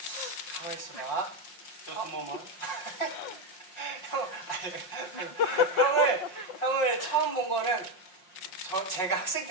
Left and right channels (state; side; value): late; right; 5.7 ms